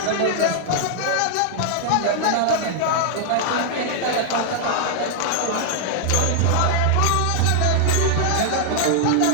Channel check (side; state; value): both; different; correlation -0.01